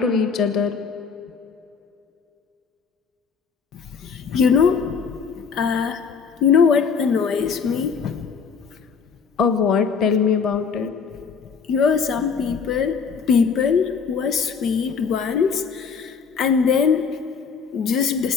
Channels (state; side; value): quieter; right; 5.9 dB